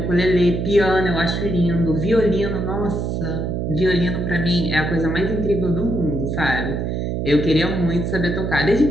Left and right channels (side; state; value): right; noise; hum, 1 dB below the sound